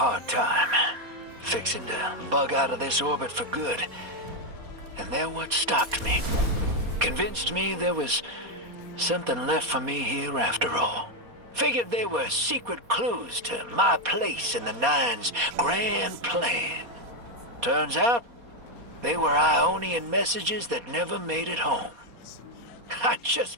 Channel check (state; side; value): late; left; 4.2 ms